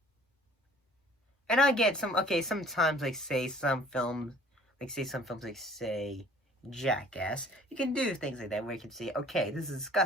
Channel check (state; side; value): normal; both; correlation 0.53